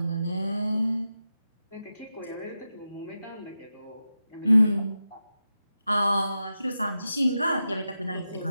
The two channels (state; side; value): inverted; both; correlation -0.91